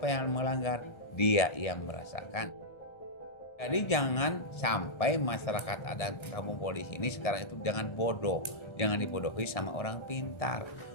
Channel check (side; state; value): right; late; 1.3 ms